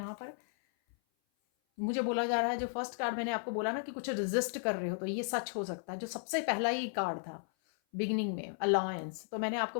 पर मुझे बोला जा रहा है, जो फर्स्ट कार्ड मैंने आपको बोला ना कि कुछ रेजिस्ट कर रहे हो, तो ये सच हो सकता है। जो सबसे पहला ही कार्ड था बिगिनिंग में, अलायंस, तो मैंने आपको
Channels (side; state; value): right; silent; 55 dB below the other